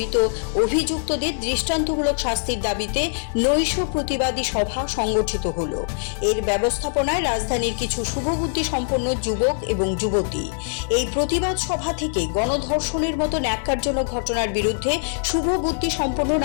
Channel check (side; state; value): right; silent; digital silence